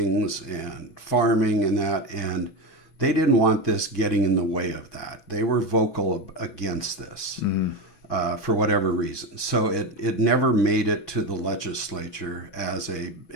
and farming and that, and they didn't want this getting in the way of that. They were vocal against this for whatever reason. So it never made it to the legislature as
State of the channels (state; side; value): late; right; 6.1 ms